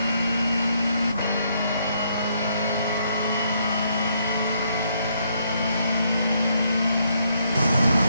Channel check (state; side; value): inverted; both; correlation -0.73